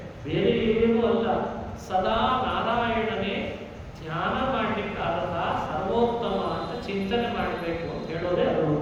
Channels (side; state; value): both; identical; correlation 1.00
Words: ಬೇರೆ ಏನೂ ಅಲ್ಲ, ಸದಾ ನಾರಾಯಣನೇ ಧ್ಯಾನ ಮಾಡಲಿಕ್ಕಾದ ಸರ್ವೋತ್ತಮ ಅಂತ ಚಿಂತನೆ ಮಾಡಬೇಕು ಅಂತ ಹೇಳೋದೇ ಅದರ